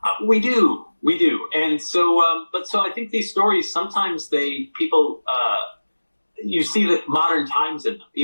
We do. And so, so I think these stories, sometimes people, you see the modern times in them,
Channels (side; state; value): both; inverted; correlation -1.00